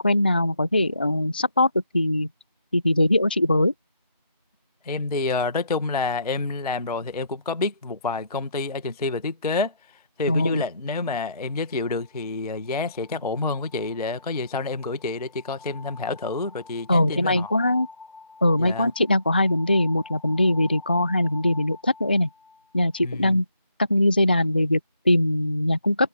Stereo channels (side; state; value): both; inverted; correlation -0.74